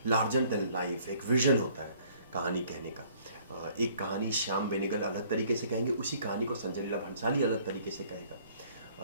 लार्जर देन लाइफ एक विजन होता है कहानी कहने का। एक कहानी श्याम बेनेगल अलग तरीके से कहेंगे, उसी कहानी को संजय लीला भंसाली अलग तरीके से कहेगा।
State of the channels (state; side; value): inverted; both; correlation -0.59